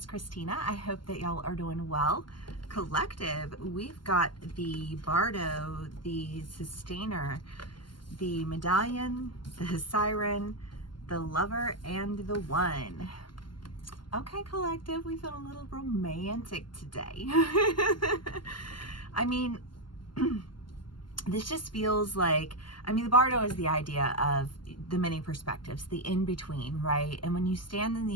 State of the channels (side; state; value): right; late; 0.71 ms